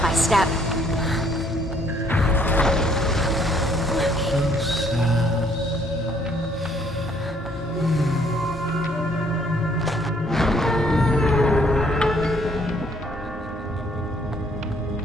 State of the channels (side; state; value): both; normal; correlation 0.64